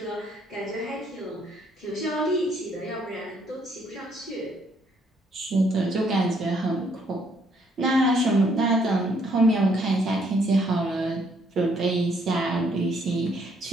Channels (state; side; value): normal; both; correlation 0.68